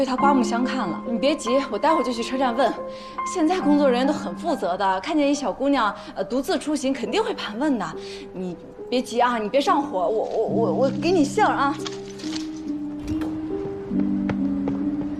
她刮目相看了。你别急，我待会儿就去车站问。现在工作人员都很负责的，看见一小姑娘独自出行，肯定会盘问的。你别急啊，你别上火，我给你信儿啊。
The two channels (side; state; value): both; identical; correlation 1.00